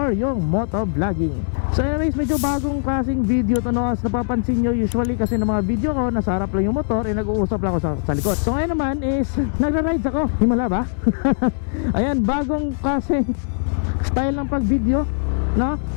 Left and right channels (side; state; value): right; silent; digital silence